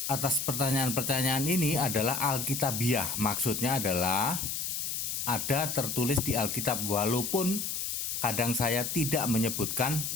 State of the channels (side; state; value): left; noise; hiss, 2 dB below the sound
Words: atas pertanyaan-pertanyaan ini adalah alkitabiah. Maksudnya adalah ada tertulis di Alkitab, walaupun kadang saya tidak menyebutkan